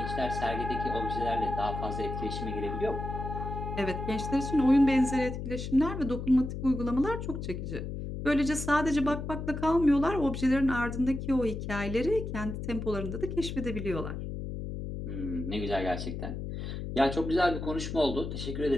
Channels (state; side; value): noise; left; hum, 6 dB below the sound